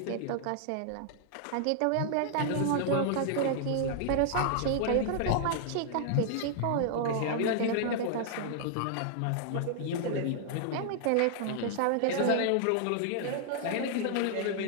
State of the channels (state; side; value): different; both; correlation 0.00